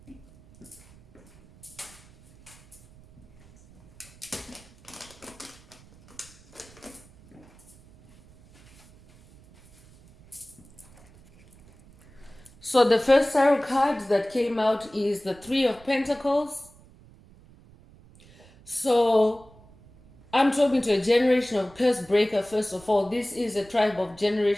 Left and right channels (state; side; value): noise; right; rumble, 25 dB below the sound